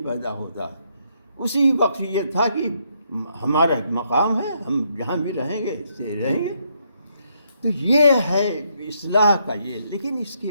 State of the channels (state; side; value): inverted; both; correlation -0.75